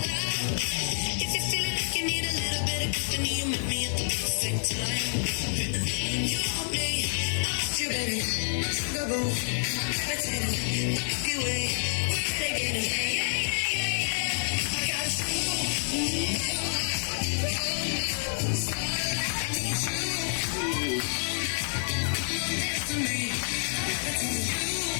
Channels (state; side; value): silent; right; digital silence